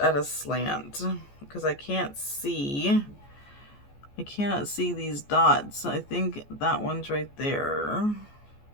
a slant? Because I cannot see these dots. I think that one's right there.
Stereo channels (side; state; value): right; late; 14 ms